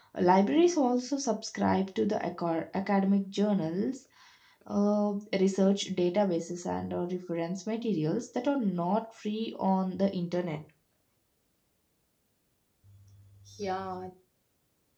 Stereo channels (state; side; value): identical; both; correlation 1.00